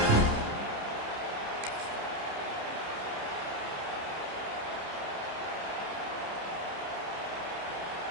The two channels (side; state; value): left; late; 29 ms